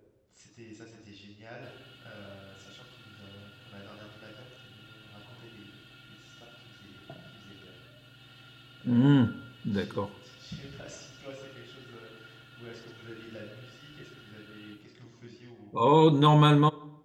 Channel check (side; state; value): both; identical; correlation 1.00